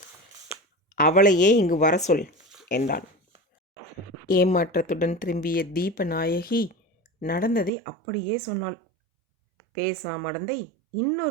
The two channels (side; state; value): left; drops out; at 7.7 s